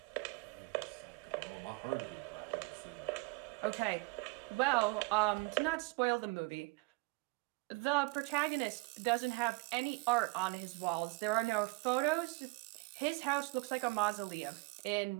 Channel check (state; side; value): quieter; left; 27.0 dB